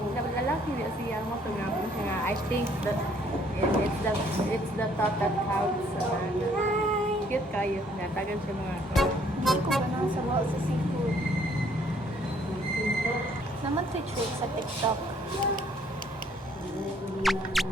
niya siya mo ito nga. I think that it's the thought that counts. Cute kayo. Natagan siya mga Hindi ko ba nang sabaw sa seafood? Naman trick sa TikTok.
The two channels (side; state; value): both; normal; correlation 0.63